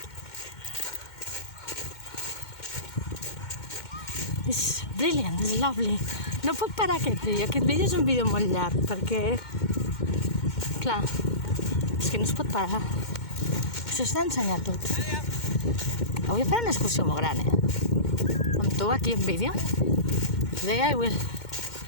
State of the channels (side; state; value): right; late; 2.1 ms